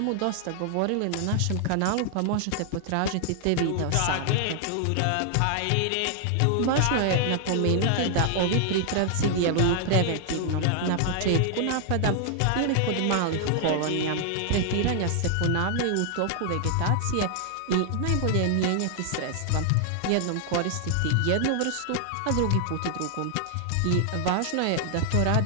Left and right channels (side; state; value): both; different; correlation 0.00